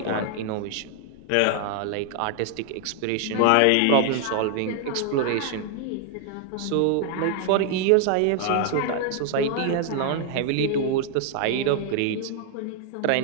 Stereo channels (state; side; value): different; both; correlation 0.00